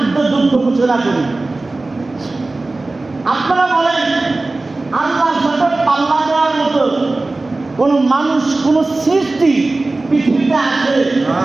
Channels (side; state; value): left; quieter; 3.2 dB